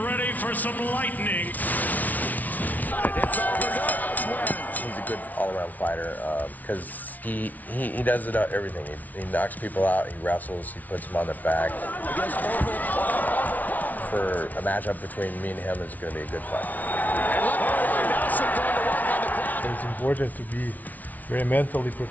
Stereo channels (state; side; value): late; right; 0.076 ms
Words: for some lightning. He's a good all-around fighter because he does it everything. He knocks people out, he wrestles, he puts them on their back. For a matchup between me and him, it's going to be a good fight. It's important to be very mentally